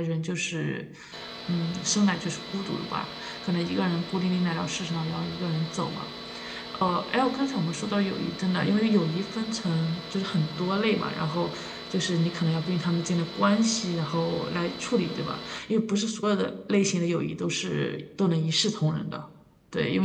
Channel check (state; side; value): identical; both; correlation 1.00